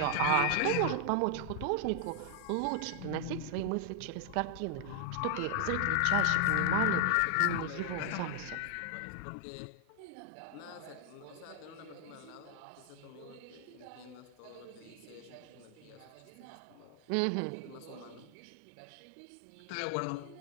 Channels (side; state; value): both; different; correlation 0.00